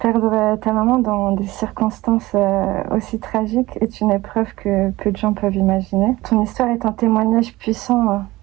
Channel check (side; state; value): left; quieter; 18.8 dB